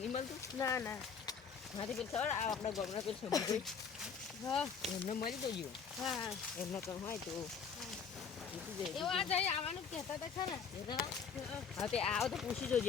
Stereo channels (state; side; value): quieter; right; 6.4 dB